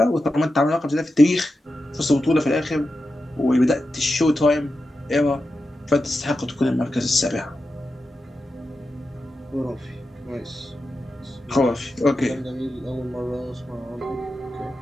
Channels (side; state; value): both; normal; correlation 0.90